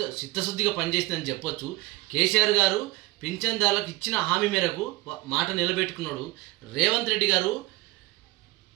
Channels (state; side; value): quieter; left; 20.4 dB